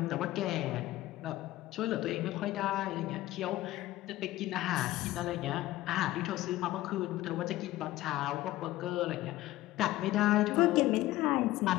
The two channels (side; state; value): right; quieter; 16.3 dB